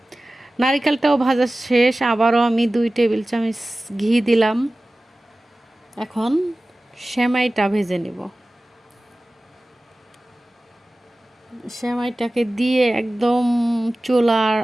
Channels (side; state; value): both; normal; correlation 0.97